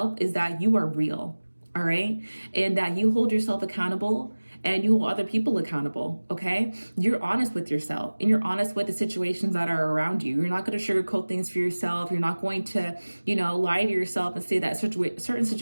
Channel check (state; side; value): inverted; both; correlation -1.00